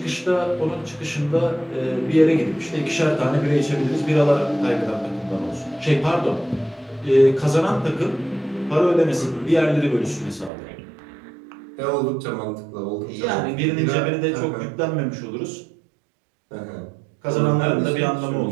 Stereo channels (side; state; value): left; drops out; at 10.5 s